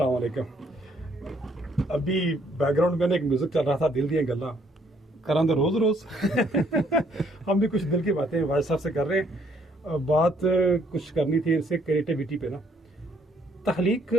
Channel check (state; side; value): normal; both; correlation 0.66